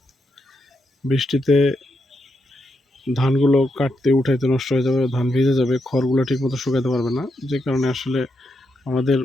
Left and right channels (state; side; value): normal; both; correlation 0.82